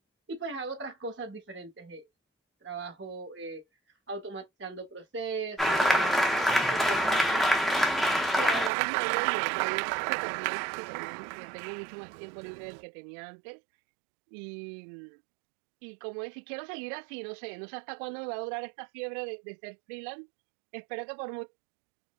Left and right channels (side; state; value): left; drops out; at 8.7 s